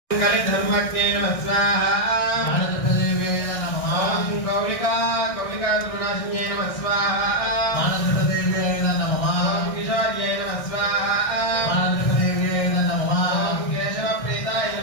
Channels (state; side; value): late; right; 1.6 ms